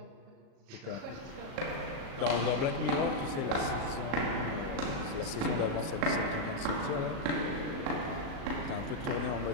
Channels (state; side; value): late; left; 37 ms